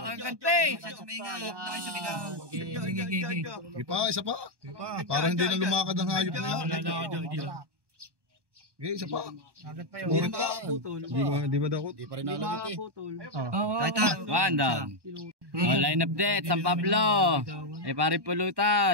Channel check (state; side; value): late; left; 1.1 ms